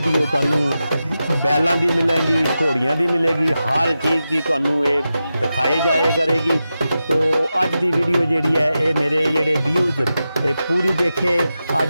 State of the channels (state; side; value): inverted; both; correlation -0.91